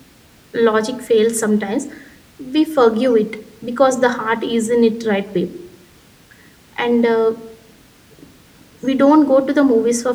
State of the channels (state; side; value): identical; both; correlation 1.00